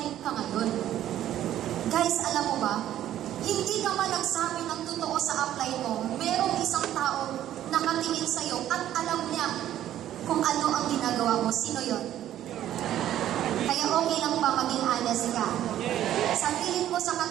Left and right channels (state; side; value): quieter; left; 12.1 dB